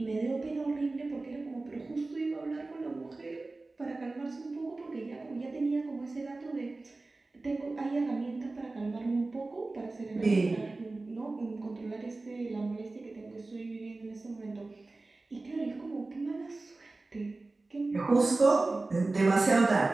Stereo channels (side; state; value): left; quieter; 3.3 dB